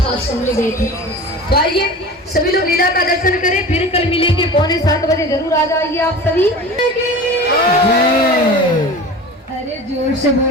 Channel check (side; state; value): both; normal; correlation 0.35